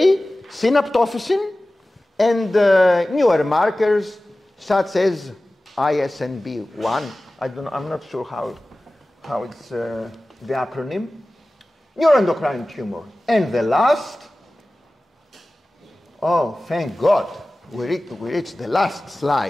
synaptophysin, and newer markers such as ISNB1. I'm not sure how it's the acronym. Neuroendocrine tumor. And the last, oh, thank God, we reached the last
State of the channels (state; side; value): normal; both; correlation 0.97